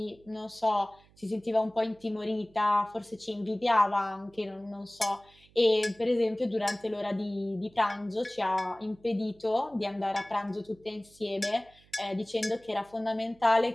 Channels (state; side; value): noise; right; hum, 29 dB below the sound